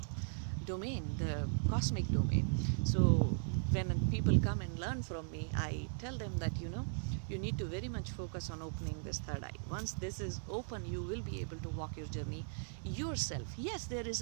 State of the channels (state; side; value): silent; left; digital silence